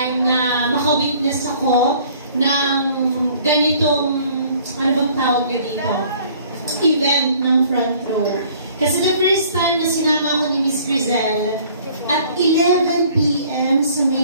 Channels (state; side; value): inverted; both; correlation -0.55